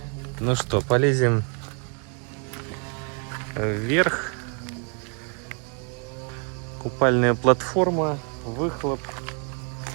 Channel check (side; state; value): left; quieter; 39.1 dB